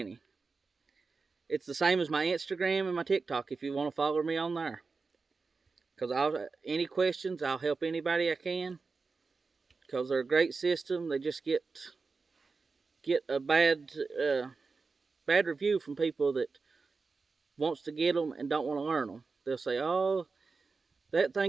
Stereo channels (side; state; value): left; quieter; 4.4 dB